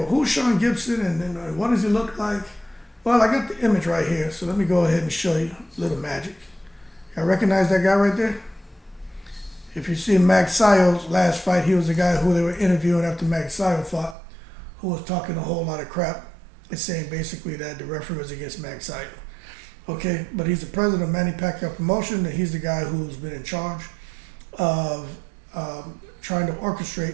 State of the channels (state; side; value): drops out; left; at 14.2 s